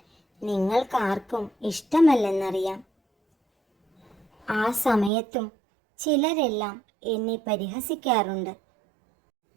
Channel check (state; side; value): drops out; left; at 5.1 s